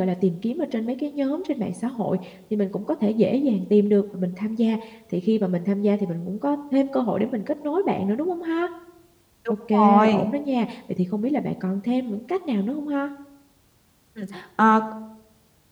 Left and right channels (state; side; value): identical; both; correlation 1.00